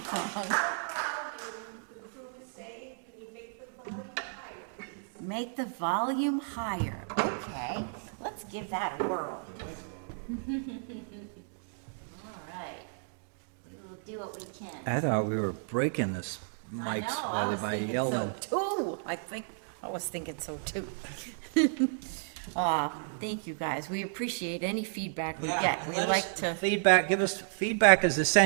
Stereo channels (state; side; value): silent; left; digital silence